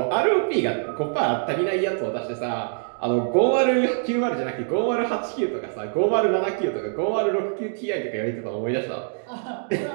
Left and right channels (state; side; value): silent; left; 62 dB below the other